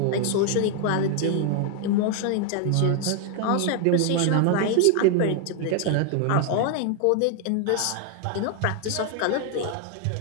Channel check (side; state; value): both; different; correlation 0.00